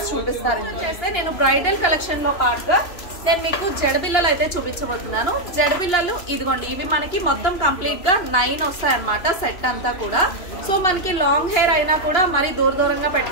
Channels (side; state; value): right; late; 3.0 ms